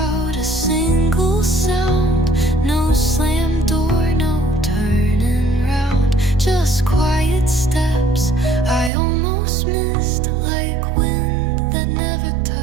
a single sound. No slam door, no turning round, just quiet steps I almost missed, like wind that never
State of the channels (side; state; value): left; drops out; at 8.9 s